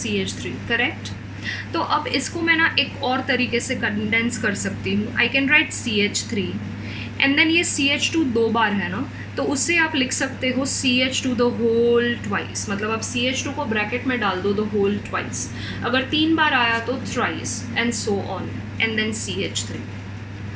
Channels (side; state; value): both; identical; correlation 1.00